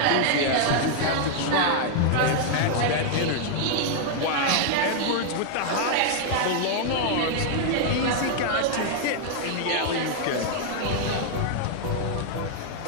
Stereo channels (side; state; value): both; different; correlation 0.00